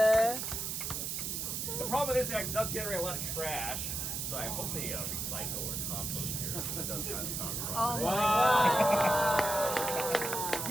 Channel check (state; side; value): noise; right; hiss, 3 dB below the sound